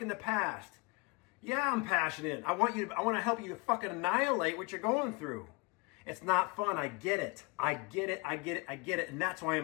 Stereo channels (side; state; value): right; quieter; 28.7 dB